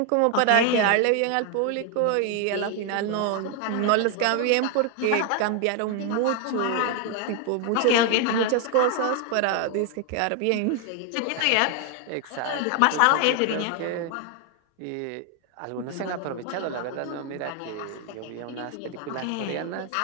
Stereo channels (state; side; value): different; both; correlation 0.01